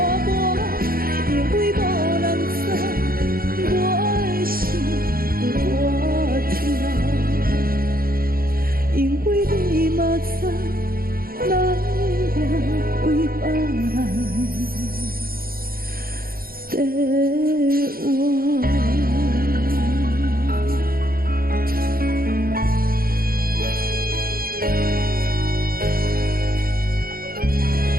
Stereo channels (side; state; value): left; late; 0.43 ms